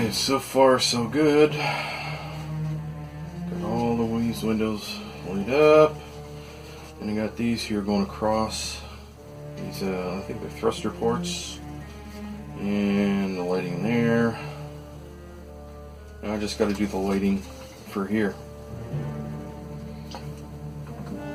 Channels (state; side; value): identical; both; correlation 1.00